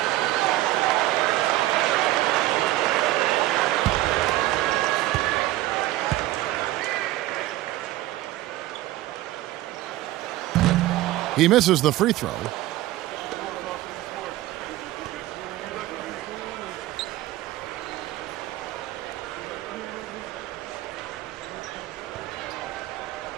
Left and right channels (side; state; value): left; quieter; 16.1 dB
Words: He misses the free throw.